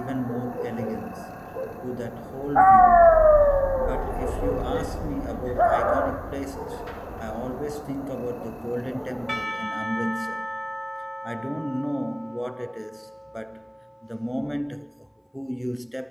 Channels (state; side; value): identical; both; correlation 1.00